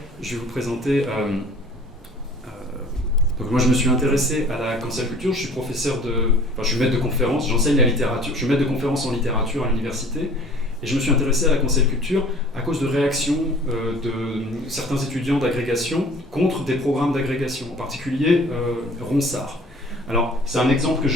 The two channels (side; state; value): both; normal; correlation 0.49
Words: je vais vous présenter... donc moi je me suis intéressé à la cancel culture, je suis je suis maître de conférence, j'enseigne la littérature, je suis maître de conférence en littérature à l'université, et je me suis intéressé à la cancel culture à cause de réactions de certains étudiants d'agrégation contre des programmes d'agrégation, en particulier Ronsard. Alors, c'est un exemple que